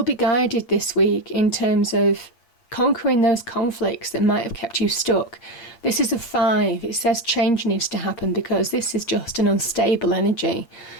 be guided this week in terms of conquering those conflicts that might have kept you stuck. This is a 5. It says change needs to happen because this is just an unstable energy.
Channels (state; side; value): late; right; 8.6 ms